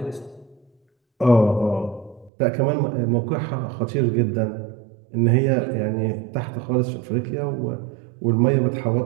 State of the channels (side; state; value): left; drops out; at 2.3 s